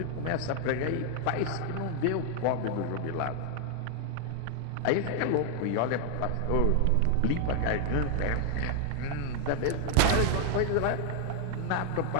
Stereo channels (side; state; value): both; different; correlation 0.00